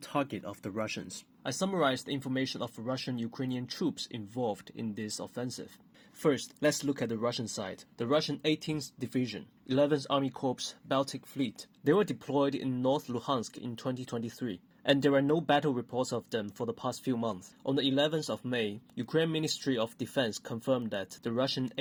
of the Russians. I summarized the information of Russian-Ukrainian troops involved in this offensive. First, let's look at the Russian side. The Russian 18th Division, 11th Army Corps, Baltic Fleet. They were deployed in North Luhansk in 2023, and there are no battle reports of them for the past few months. On the 11th of May, Ukraine Ministry of Defense confirmed that the Russian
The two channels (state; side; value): identical; both; correlation 1.00